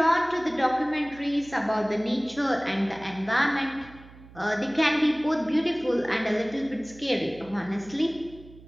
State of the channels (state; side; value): noise; right; hum, 21 dB below the sound